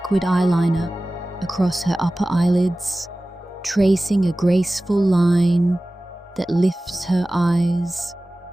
eyeliner across her upper eyelids, tracing a graceful line that lifts her eyes.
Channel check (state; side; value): normal; both; correlation 0.97